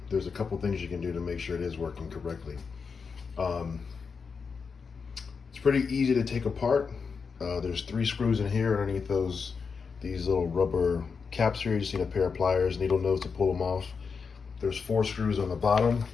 there's a couple things you can do to make sure it is working correctly. Um, it's pretty easy to take apart. There's 3 screws in here underneath these little rubber caps here. You just need a pair of pliers, needle nose to pull them off. There's 4 screws on the bottom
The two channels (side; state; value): right; quieter; 5.5 dB